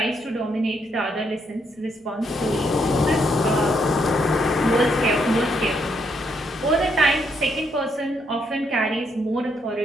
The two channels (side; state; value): both; normal; correlation 0.75